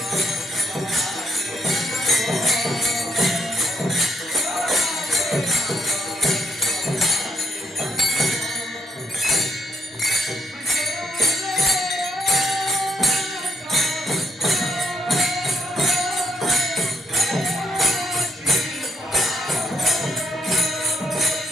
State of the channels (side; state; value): both; normal; correlation 0.73